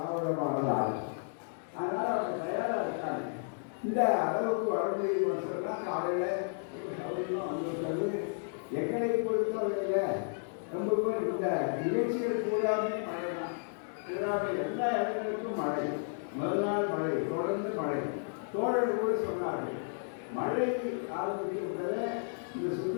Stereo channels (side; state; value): right; silent; digital silence